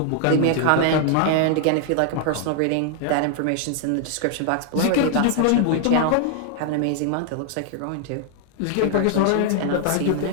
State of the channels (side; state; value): both; different; correlation 0.00